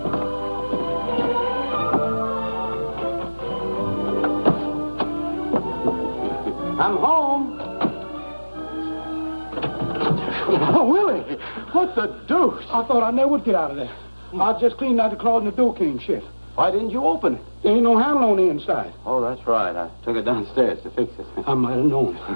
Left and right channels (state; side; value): inverted; both; correlation -1.00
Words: I'm home. Oh, Willie, what the deuce? I thought I never would get out of there. I just cleaned out the closet and the door came shut. Why didn't you open it? There ain't no handle on the inside. Oh, that's right. I took it downstairs to fix it. I might have known.